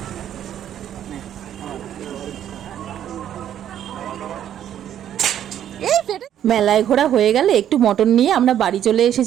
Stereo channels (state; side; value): quieter; left; 10.5 dB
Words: এই ফেটে মেলায় ঘোরা হয়ে গেলে একটু মটন নিয়ে আমরা বাড়ি চলে